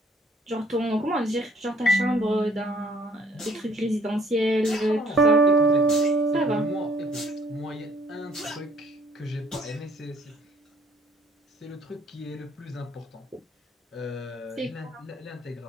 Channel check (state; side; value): normal; both; correlation 0.60